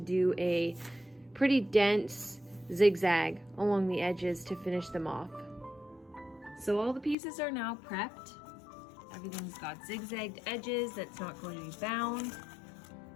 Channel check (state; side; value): drops out; right; at 7.2 s